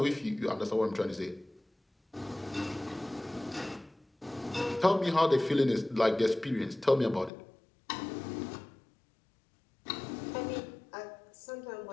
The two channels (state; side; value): drops out; right; at 7.3 s